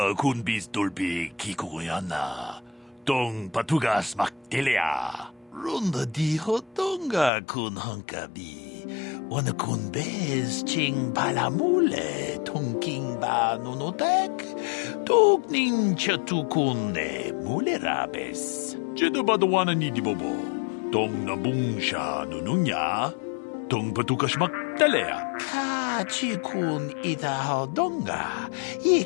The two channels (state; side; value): drops out; right; at 7.3 s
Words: kun bis dolbi kikugoyana. Tong patugas magtilea. Runda di hodonga kun hunkabi. Wana kun bez ching palamule tongking ba nunotek. Tuk nin chatukune mulerabes. Jeda badawana ni dibobo. Tong nabung siya nununya. Tong patukas magtalea. Ka chikun idahodonga.